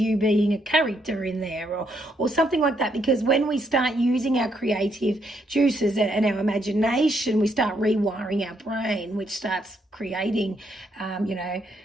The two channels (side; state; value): both; normal; correlation 0.75